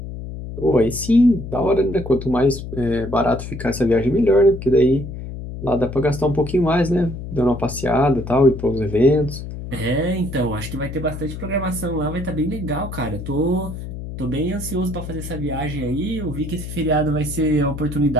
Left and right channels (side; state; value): left; noise; hum, 9 dB below the sound